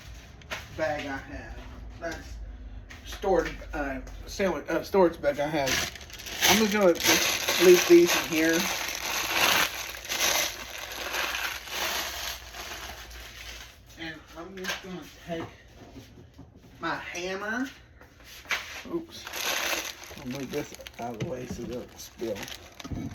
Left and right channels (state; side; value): identical; both; correlation 1.00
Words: bag I have. That's storage bag I have. I'm just going to leave these in here. And I'm just going to take my hammer. Oops. I'll move this out of the way so it doesn't spill.